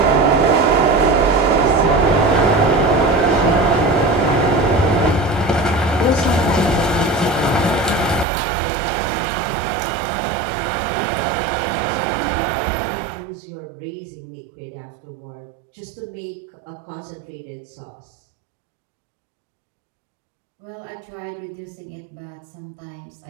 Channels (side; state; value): left; drops out; at 8.2 s